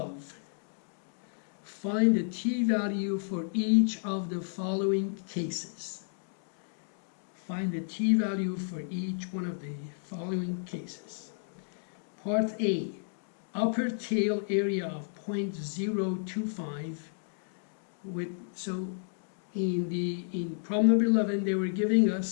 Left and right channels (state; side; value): silent; right; digital silence